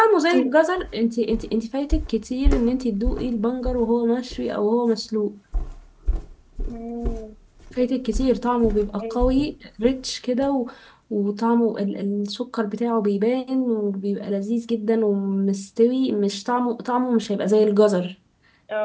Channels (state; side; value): identical; both; correlation 1.00